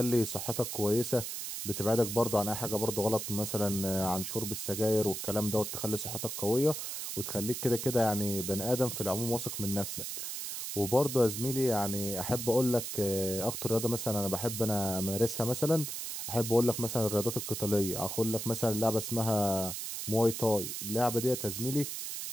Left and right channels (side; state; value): right; noise; hiss, 5 dB below the sound